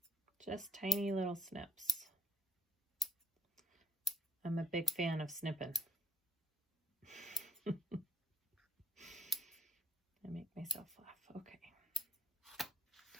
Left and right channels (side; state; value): both; normal; correlation 0.66